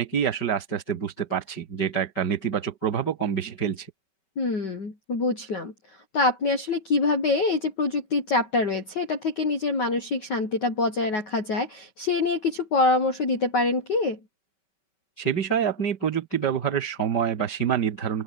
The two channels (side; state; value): right; late; 5.2 ms